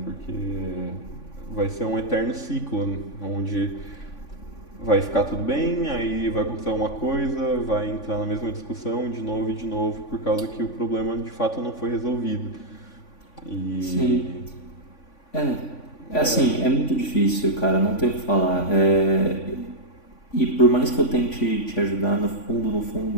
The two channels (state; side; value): late; right; 3.5 ms